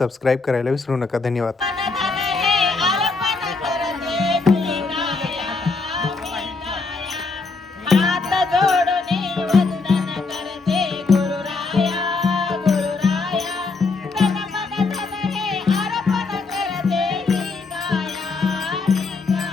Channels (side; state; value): right; quieter; 4.1 dB